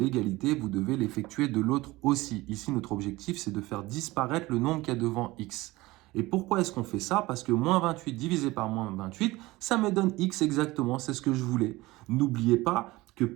vous devez l'effectuer de l'autre aussi. Ici, notre objectif, c'est de faire disparaître le nombre qu'il y a devant x. Et pourquoi est-ce qu'on fait ça? Parce que moins 28 divisé par moins 28, ça me donne x exactement, c'est ce que je voulais. N'oubliez pas que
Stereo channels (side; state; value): left; quieter; 19.9 dB